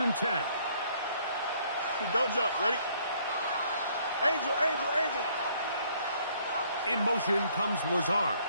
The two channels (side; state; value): both; inverted; correlation -0.64